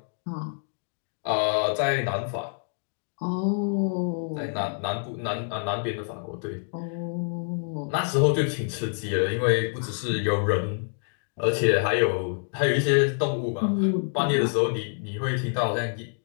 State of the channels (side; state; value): right; silent; digital silence